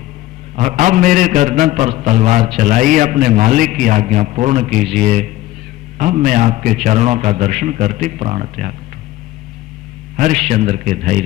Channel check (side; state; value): right; quieter; 16.1 dB